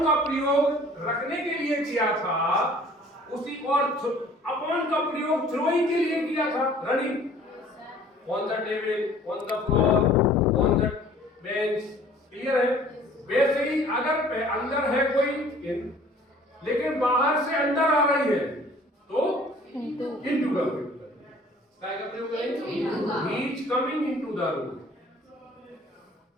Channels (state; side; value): normal; both; correlation 0.52